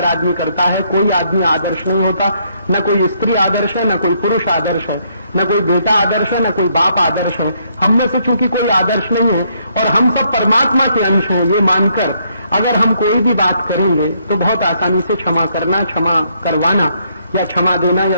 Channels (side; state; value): both; inverted; correlation -0.71